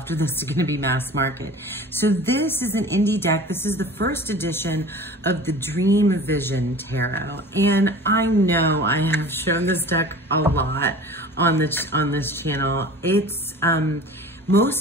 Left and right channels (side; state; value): both; normal; correlation 0.40